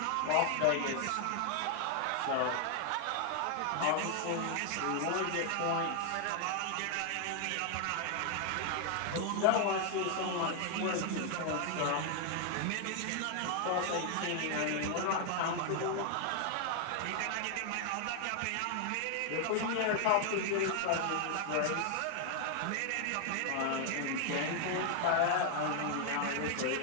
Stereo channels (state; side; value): different; both; correlation 0.00